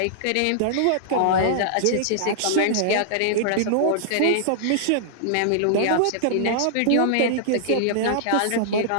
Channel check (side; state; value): both; different; correlation -0.01